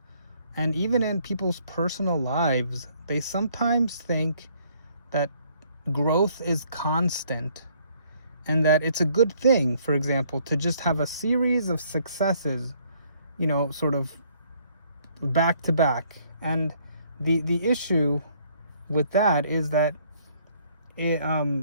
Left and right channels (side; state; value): both; inverted; correlation -0.65